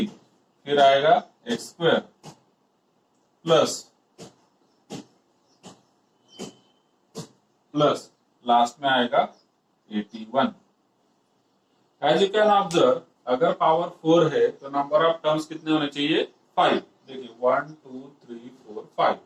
फिर आएगा एक्स स्क्वायर प्लस लास्ट में आएगा 81। एज यू कैन ऑब्जर्व, अगर पावर 4 है तो नंबर ऑफ टर्म्स कितने होने चाहिए? 5। देखिए 1 2 3 4 5।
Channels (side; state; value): both; identical; correlation 1.00